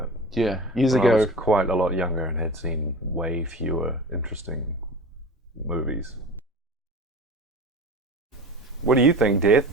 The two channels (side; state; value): both; normal; correlation 0.35